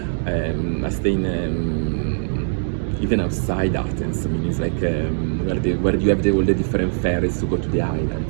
I stay in even outside Athens. It's like where you have all the different ferries to go to the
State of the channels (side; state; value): left; silent; digital silence